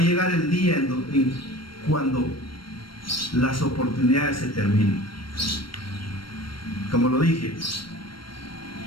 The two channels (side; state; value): right; late; 0.73 ms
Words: llegar el día cuando las oportunidades se terminen. Como lo dije,